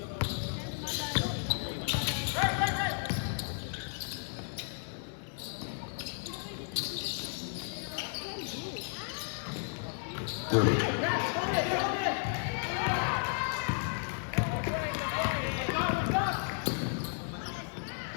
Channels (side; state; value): right; silent; 55 dB below the other